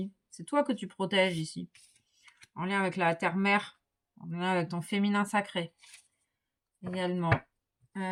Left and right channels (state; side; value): identical; both; correlation 1.00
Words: C'est toi que tu protèges ici. En lien avec la terre-mère. En lien avec ton féminin sacré. Également.